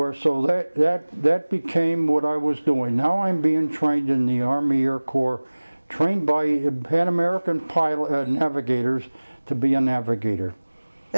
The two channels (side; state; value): both; inverted; correlation -1.00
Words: so that became what I was doing. Now I'm being trained in the Army Air Corps, trained by Pan American pilot navigators to be a navigator.